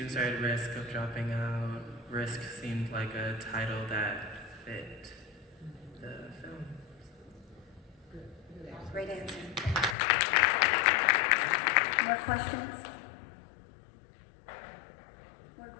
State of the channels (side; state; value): right; drops out; at 10.0 s